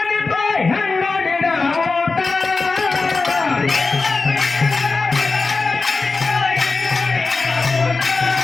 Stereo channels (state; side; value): quieter; right; 4.0 dB